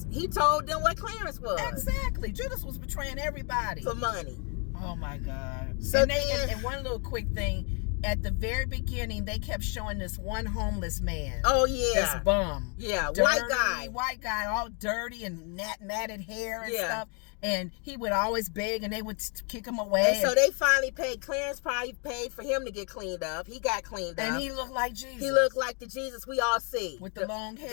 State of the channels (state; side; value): quieter; right; 36.3 dB